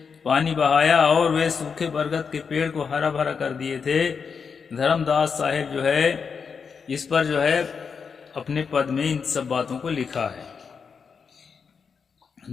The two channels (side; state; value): right; quieter; 5.9 dB